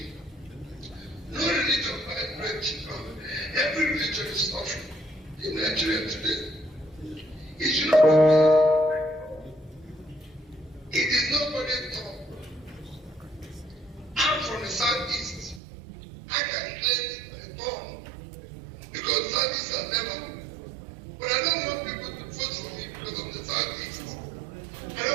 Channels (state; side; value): drops out; left; at 15.6 s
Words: No religion buys bread cheaper. Every religion is suffering in Nigeria today. It should not be based. It is nobody's talk. I'm from the southeast. I can claim it my tongue because southeast are never. But I don't want people to vote for me because of the southeast. I